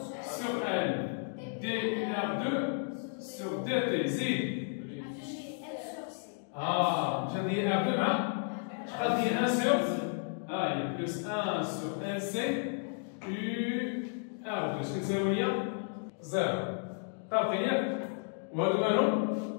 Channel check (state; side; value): silent; right; 56 dB below the other